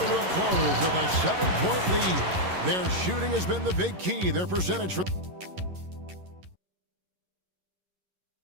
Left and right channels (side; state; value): left; late; 11 ms